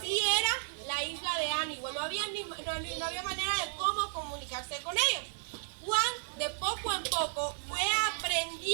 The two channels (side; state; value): left; silent; digital silence